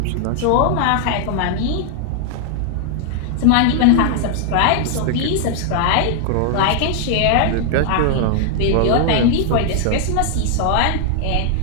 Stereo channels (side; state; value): both; different; correlation 0.00